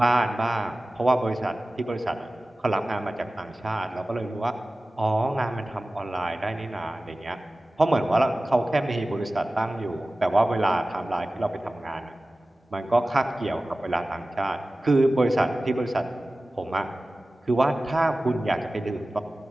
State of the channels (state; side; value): normal; both; correlation 0.97